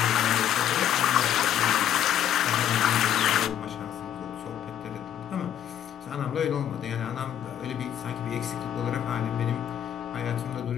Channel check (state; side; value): quieter; right; 10.4 dB